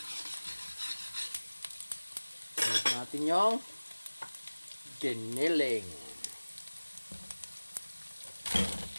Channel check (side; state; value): both; inverted; correlation -1.00